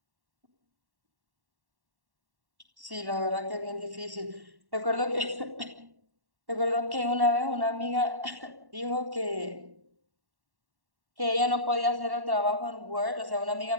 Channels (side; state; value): left; late; 1.1 ms